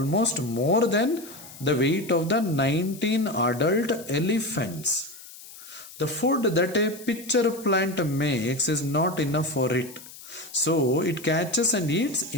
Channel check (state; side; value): noise; left; hiss, 17 dB below the sound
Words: more than the weight of the 19 adult elephants. The food that a pitcher plant makes is not enough for it. So it catches and eats